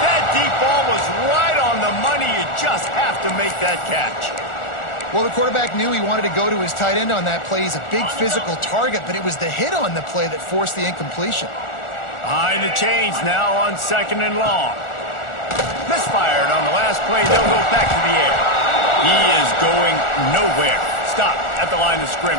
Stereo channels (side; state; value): right; late; 1.4 ms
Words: That deep ball was right on the money. You just have to make that catch. Well, the quarterback knew he wanted to go to his tight end on that play. He's a big physical target, but it was the hit on the play that forced the incompletion. Behind the chains now on second and long. Misfired on the last play. They'll go back to the air. He is going nowhere. Stop at the line of